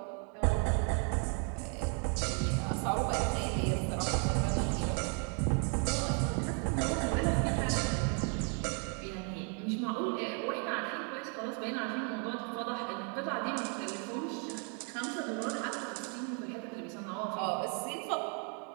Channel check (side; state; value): left; quieter; 39.9 dB